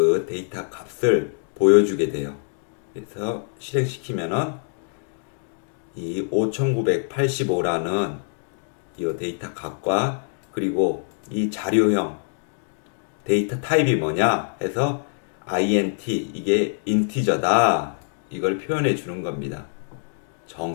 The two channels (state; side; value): silent; right; digital silence